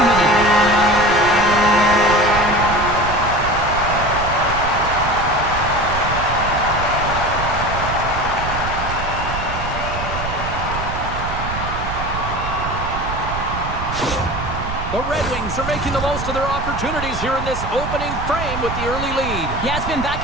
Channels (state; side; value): noise; right; rumble, 7 dB below the sound